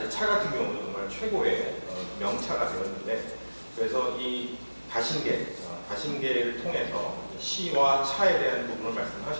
차 같은 경우는 정말 최고의 명차가 되었는데 그래서 이 다신계를 통해서 시와 차에 대한 부분을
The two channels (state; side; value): inverted; both; correlation -1.00